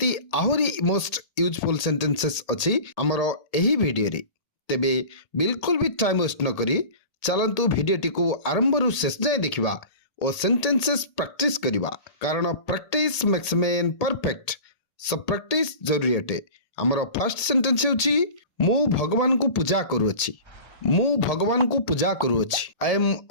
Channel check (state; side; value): late; right; 1.8 ms